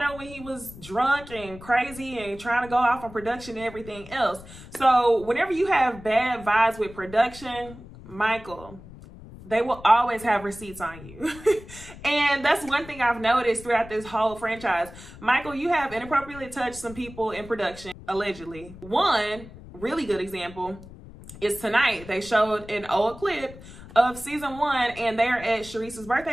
when he was drunk and crazy and trying to go off on production and everything else. So whenever you have bad vibes with production, Michael, they will always have receipts on you. And that's one thing I've noticed throughout this whole franchise. Michael, you have inappropriately touched some people in production, allegedly. One really good example is tonight. They showed an old clip of season 1, and they're at Sharice's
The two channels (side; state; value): left; noise; rumble, 17 dB below the sound